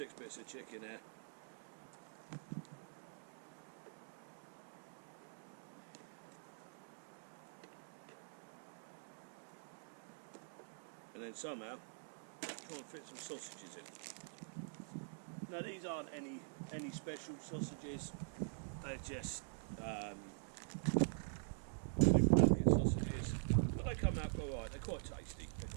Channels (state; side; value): silent; left; digital silence